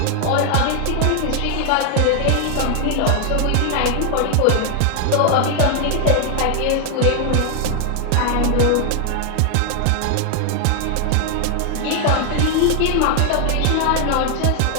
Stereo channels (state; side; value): different; both; correlation 0.00